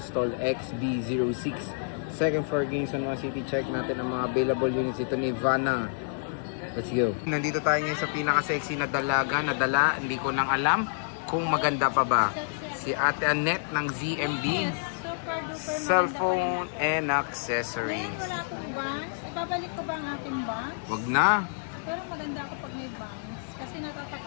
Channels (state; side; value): silent; right; digital silence